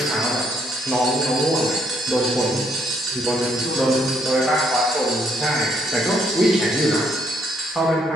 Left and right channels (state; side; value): normal; both; correlation 0.71